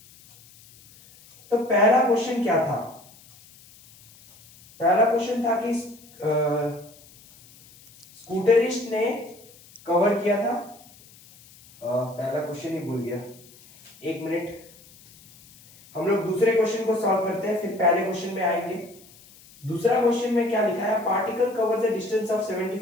तो पहला क्वेश्चन क्या था? पहला क्वेश्चन था कि स्कूटरिस्ट ने कवर किया था। पहला क्वेश्चन ही भूल गया, एक मिनट। हम लोग दूसरे क्वेश्चन को सॉल्व करते हैं, फिर पहले क्वेश्चन में आएंगे। दूसरा क्वेश्चन में क्या लिखा है? Particle covers a distance of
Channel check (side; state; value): left; noise; hiss, 24 dB below the sound